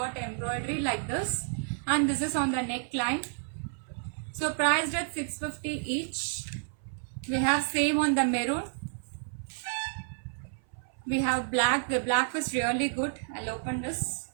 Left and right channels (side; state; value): left; silent; 57 dB below the other